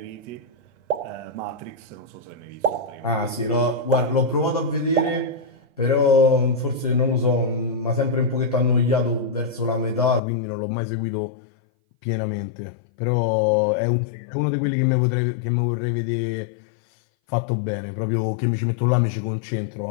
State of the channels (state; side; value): drops out; right; at 10.2 s